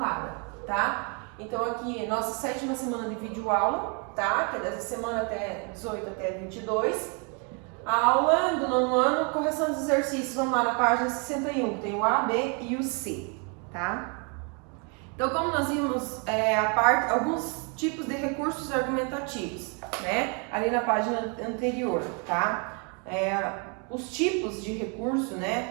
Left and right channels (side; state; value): left; quieter; 35.9 dB